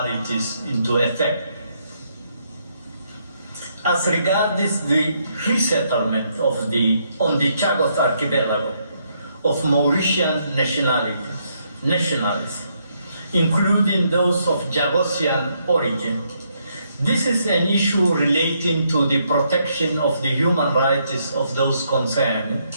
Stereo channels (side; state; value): both; inverted; correlation -0.75